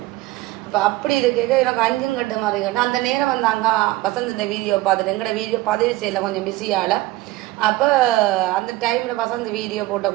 அப்போ அப்படி இது கேட்க எனக்கு 5 கட்டு மாதிரி கேட்டேன். அந்த நேரம் வந்து அங்கே வசந்தின வீடியோ பார்த்துட்டு எங்களோட வீடியோ பதிவு செய்யலை கொஞ்சம் பிஸியால் அப்போ அந்த டைமில் பார்த்தா அந்த வீடியோ போட்ட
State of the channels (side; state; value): left; quieter; 18.0 dB